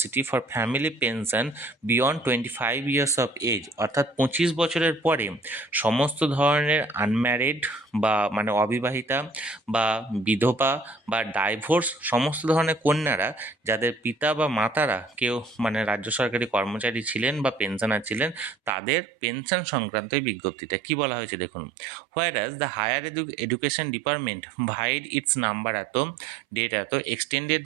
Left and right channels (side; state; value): left; drops out; at 18.8 s